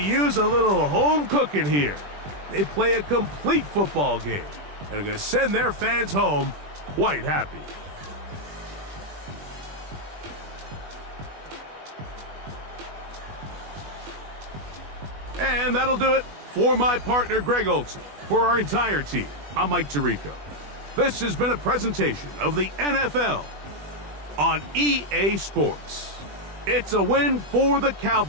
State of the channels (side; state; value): left; late; 20 ms